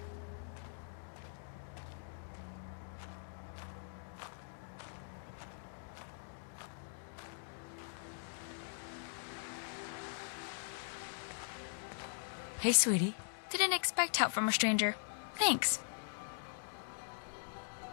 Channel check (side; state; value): right; silent; digital silence